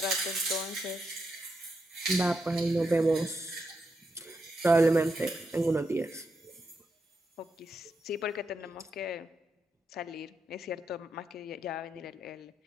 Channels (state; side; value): normal; both; correlation 0.84